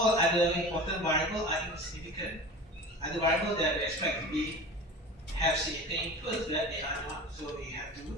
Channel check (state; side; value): normal; both; correlation 0.35